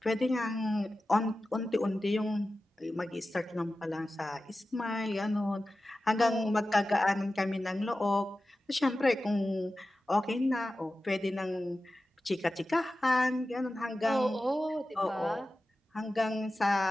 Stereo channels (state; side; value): normal; both; correlation 0.94